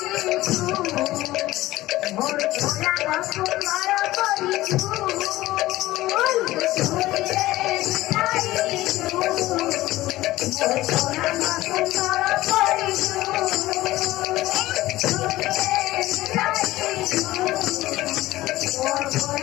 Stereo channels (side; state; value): right; quieter; 17.0 dB